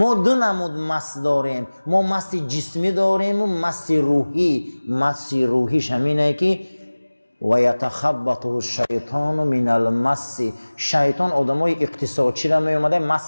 دو نمود مس داریم، ما مس جسمی داریم و مس روحی. مس روحیش همینه که و یتخبطه الشیطان من المس. شیطان آدمای اقتصادچی را می اومده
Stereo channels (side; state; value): both; inverted; correlation -1.00